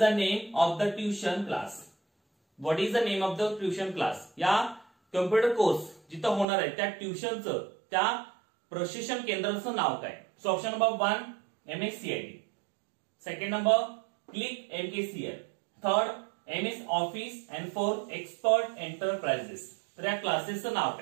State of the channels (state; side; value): drops out; left; at 6.5 s